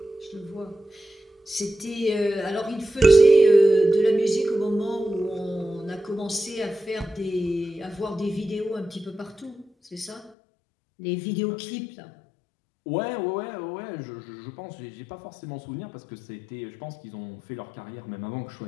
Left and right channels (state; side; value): drops out; right; at 10.3 s